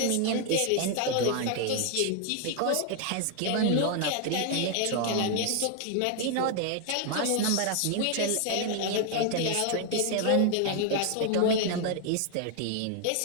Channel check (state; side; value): different; both; correlation 0.00